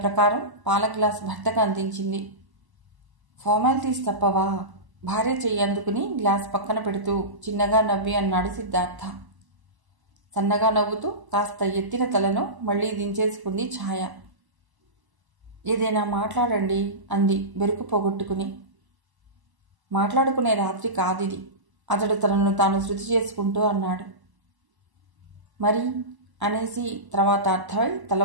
పాల గ్లాస్ భర్తకు అందించింది. ఫార్మాలిటీస్ తప్పవా? భార్య చెయ్యి అందుకుని గ్లాస్ పక్కన పెడుతూ చిన్నగా నవ్వి అన్నాడు సిద్ధార్థ. సన్నగా నవ్వుతూ కాస్త ఎత్తిన తలను మళ్లీ దించేసుకుంది ఛాయ. ఏదైనా మాట్లాడండి అంది బెరుకు పోగొట్టుకుని. మాట్లాడుకునే రాత్రి కాదిది, అతడు తనను తాను శృతి చేసుకుంటూ అన్నాడు. మరి అనేసి తర్వాత అర్థమై తల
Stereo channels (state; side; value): late; left; 1.0 ms